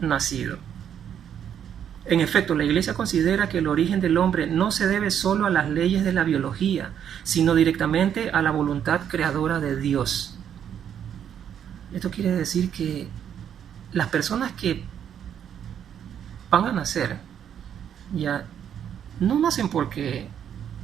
nacido. En efecto, la Iglesia considera que el origen del hombre no se debe solo a las leyes de la biología, sino directamente a la voluntad creadora de Dios. Esto quiere decir que las personas que van a nacer ya no nacen porque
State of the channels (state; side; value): quieter; left; 9.0 dB